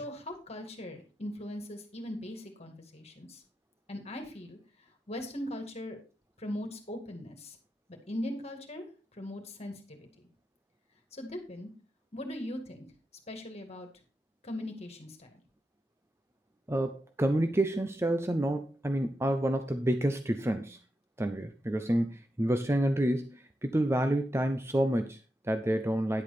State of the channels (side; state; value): both; normal; correlation 0.88